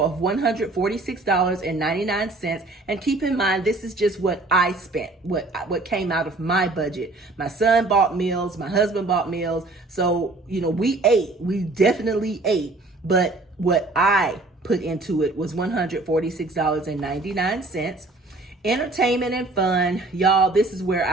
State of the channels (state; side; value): quieter; left; 3.1 dB